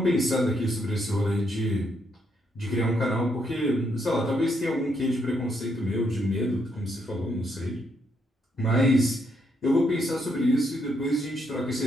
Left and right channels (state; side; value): normal; both; correlation 0.76